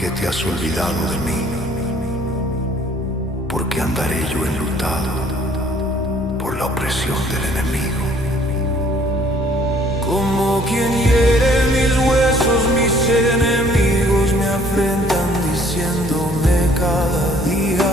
te has olvidado de mí? ¿Por qué andaré yo enlutado por la opresión del enemigo? Como quien hiere mis huesos, mis enemigos me afrentan diciéndome cada día:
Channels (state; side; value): normal; both; correlation 0.59